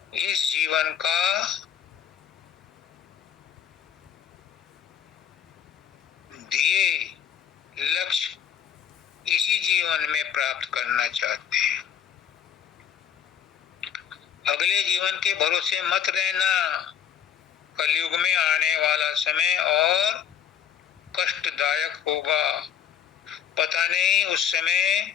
इस जीवन का दिए लक्ष्य इसी जीवन में प्राप्त करना चाहते हैं। अगले जीवन के भरोसे मत रहना। कलयुग में आने वाला समय और कष्टदायक होगा। पता नहीं उस समय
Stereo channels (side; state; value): right; quieter; 9.0 dB